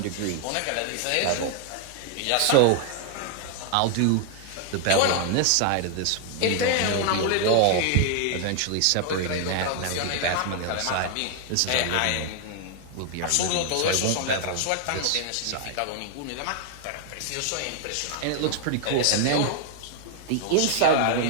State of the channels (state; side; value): different; both; correlation 0.00